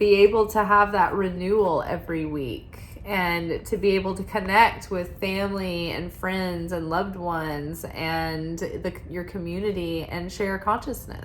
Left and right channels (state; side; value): identical; both; correlation 1.00